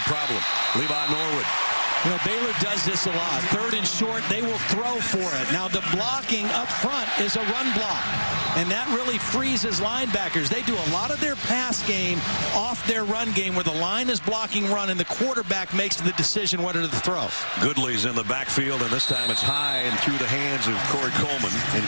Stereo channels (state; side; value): inverted; both; correlation -1.00